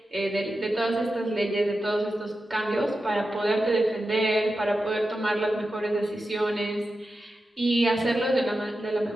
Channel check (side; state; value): both; normal; correlation 0.91